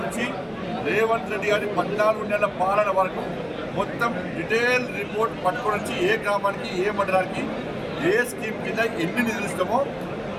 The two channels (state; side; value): identical; both; correlation 1.00